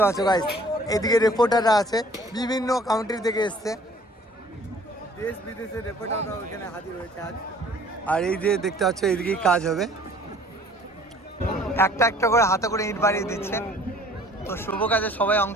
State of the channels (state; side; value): normal; both; correlation 0.53